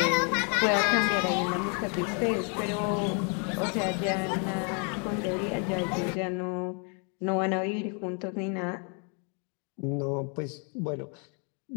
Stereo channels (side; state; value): right; quieter; 38.0 dB